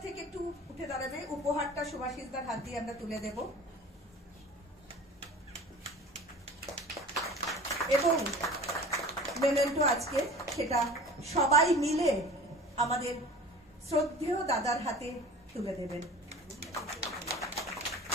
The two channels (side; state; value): both; normal; correlation 0.40